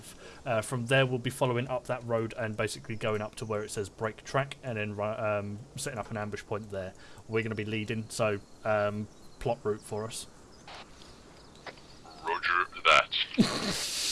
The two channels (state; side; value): identical; both; correlation 1.00